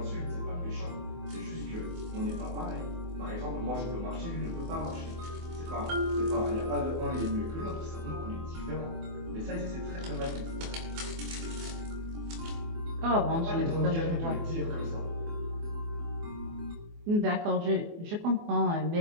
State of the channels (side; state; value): left; late; 24 ms